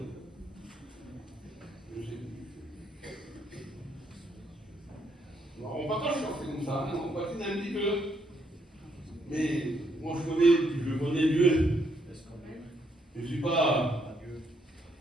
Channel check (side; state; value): both; normal; correlation 0.74